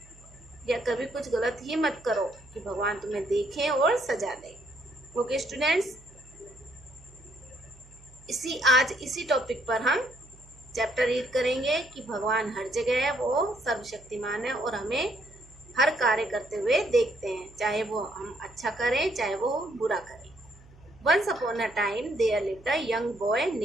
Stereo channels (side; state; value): right; noise; hum, 24 dB below the sound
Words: या कभी कुछ गलत ही मत करो कि भगवान तुम्हें देखें और सजा दे. ओके स्टूडेंट्स, आज इसी टॉपिक पर हम चैप्टर रीड करेंगे कि भगवान हर जगह है, वो सर्वशक्तिमान है और हमें हर कार्य करते हुए देखते हैं, चाहे वो हम अच्छा करें चाहे वो बुरा करें. Once upon a time there lived a young boy